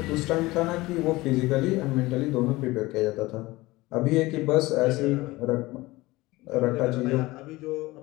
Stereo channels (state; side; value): quieter; right; 20.1 dB